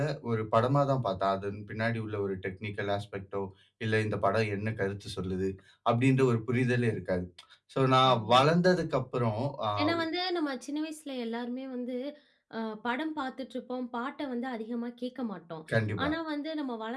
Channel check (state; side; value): identical; both; correlation 1.00